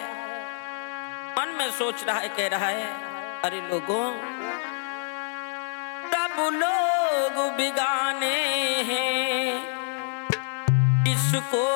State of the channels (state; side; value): silent; right; digital silence